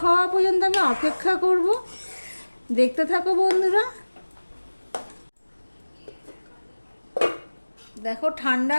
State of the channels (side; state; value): both; inverted; correlation -1.00